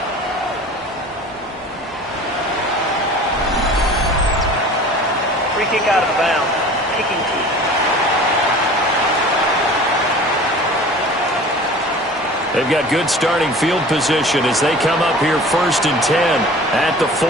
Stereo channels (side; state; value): both; normal; correlation 0.42